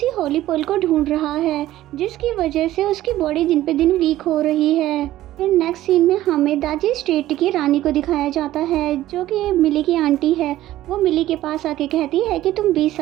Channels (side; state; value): left; quieter; 14.6 dB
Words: होली पर्ल को ढूंढ रहा है, जिसकी वजह से उसकी बॉडी दिन पे दिन वीक हो रही है। फिर नेक्स्ट सीन में हमें दाजी स्टेट की रानी को दिखाया जाता है जो कि मिली की आंटी है। वो मिली के पास आके कहती है कि तुम 20